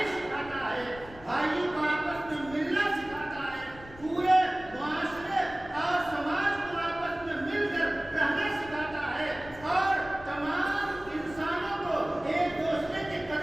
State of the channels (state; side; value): noise; left; rumble, 19 dB below the sound